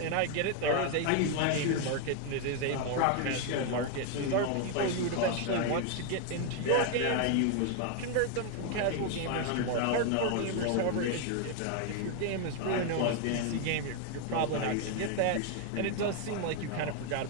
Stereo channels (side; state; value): both; different; correlation 0.01